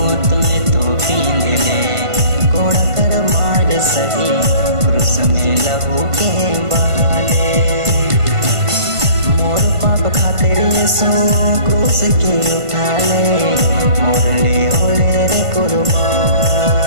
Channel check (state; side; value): late; left; 1.5 ms